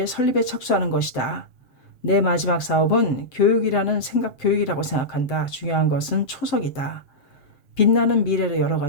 설립에 착수하는 것이다. 내 마지막 사업은 교육이라고 생각한다. 중요한 것은 초석이다. 빛나는 미래를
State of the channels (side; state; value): right; late; 7.7 ms